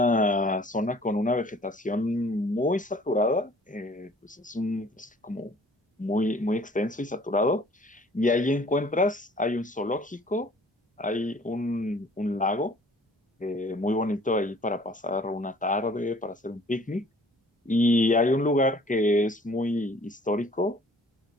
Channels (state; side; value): normal; both; correlation 0.54